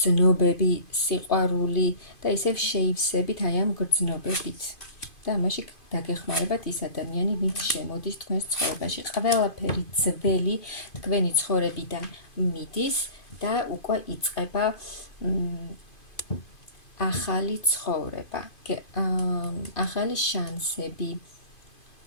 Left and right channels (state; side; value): late; right; 2.5 ms